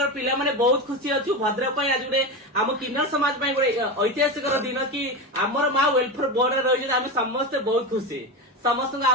पिला माने बहुत खुशी अच्छु। भद्रक आज गोटे आम किन्नर समाज गोटे ऐतिहासिक दिन कि आमर माँ वेलफेयर बोर्ड रही आम समस्त बहुत खुशी। समस्त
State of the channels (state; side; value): normal; both; correlation 0.19